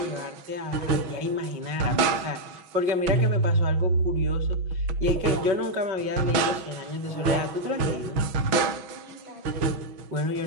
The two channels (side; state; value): left; late; 6.2 ms